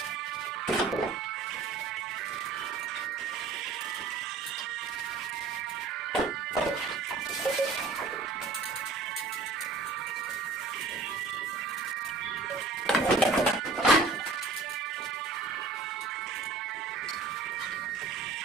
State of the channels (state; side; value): quieter; left; 4.0 dB